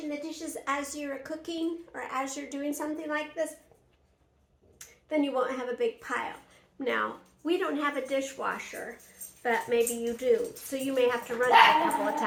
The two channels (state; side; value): identical; both; correlation 1.00